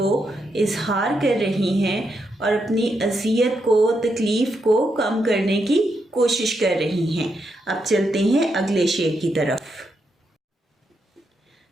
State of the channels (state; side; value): normal; both; correlation 0.82